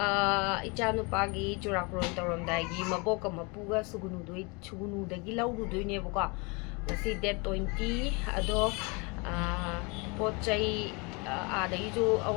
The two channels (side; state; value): right; quieter; 29.6 dB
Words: ichanupagi Churakuron Tauramdaigi Maboka Mapuga Sugunudagi Lauduinebaka Ngasi date 20 ado Pochai adaijo